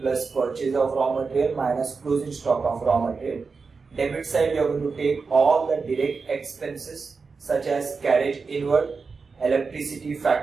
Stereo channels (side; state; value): left; quieter; 4.7 dB